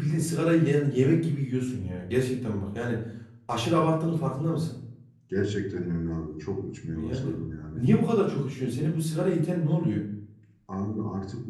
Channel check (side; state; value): both; identical; correlation 1.00